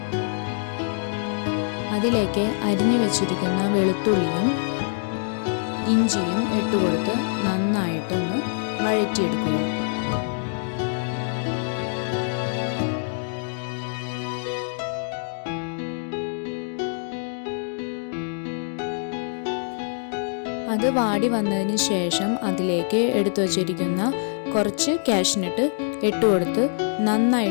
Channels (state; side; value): silent; right; digital silence